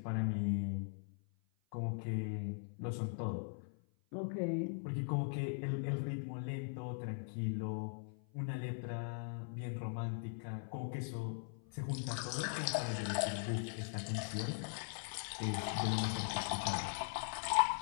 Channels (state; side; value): silent; right; 51 dB below the other